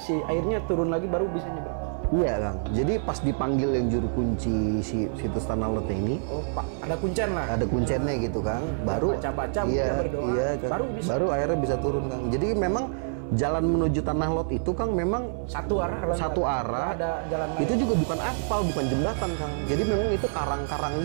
airnya turun lagi baru bisa nyebrang. Iya Kang, jadi pas dipanggil yang juru kunci situs Tanah Lot ini, Pak, ada kuncen lah. Ada kuncennya gitu Kang, baru baca-baca berdoa, Kang, baru baru akhirnya bisa turun Kang. Jadi memang jalan menuju Tanah Lot itu Kang memang satu arah. Ada jalan lain. Itu juga bukan aspal, bukan jembatan Kang. Jadi memang itu karang-karang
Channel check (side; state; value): left; silent; digital silence